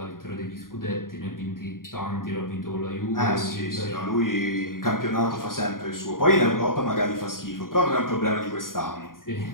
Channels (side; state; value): right; late; 0.91 ms